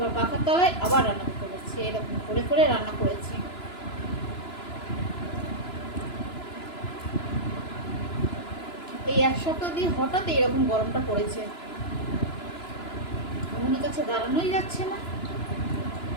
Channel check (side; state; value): right; late; 2.9 ms